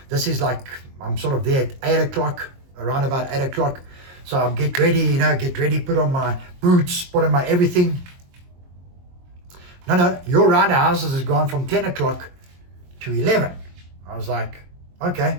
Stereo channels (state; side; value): late; left; 22 ms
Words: This is I'm sort of there at 8 o'clock, around about 8 o'clock. So I'm get ready, put on my boots, put on my everything. No, your round the houses has gone from 10 o'clock to 11. I was like,